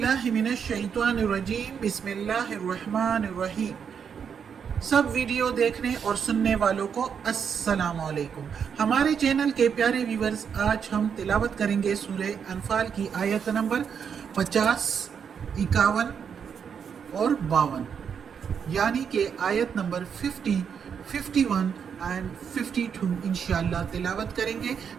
من الشیطان الرجیم بسم اللہ الرحمن الرحیم۔ سب ویڈیو دیکھنے اور سننے والوں کو السلام علیکم۔ ہمارے چینل کے پیارے ویورز، آج ہم تلاوت کریں گے سورہ انفال کی آیت نمبر 50، 51 اور 52، یعنی کہ آیت نمبر 50، 51 اینڈ 52 انشاءاللہ تلاوت کریں گے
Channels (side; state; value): left; quieter; 7.1 dB